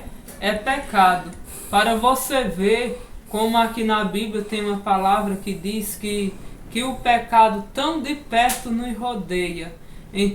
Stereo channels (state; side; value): identical; both; correlation 1.00